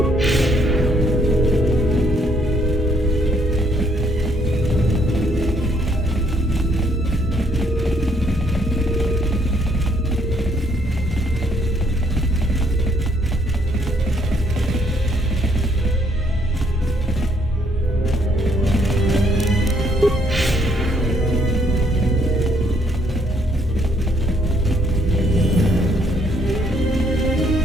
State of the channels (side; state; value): both; normal; correlation 0.68